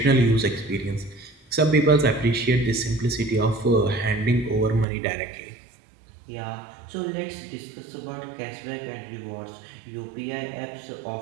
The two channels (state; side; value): drops out; left; at 4.9 s